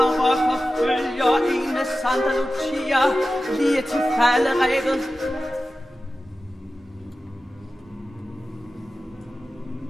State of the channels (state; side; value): normal; both; correlation 0.94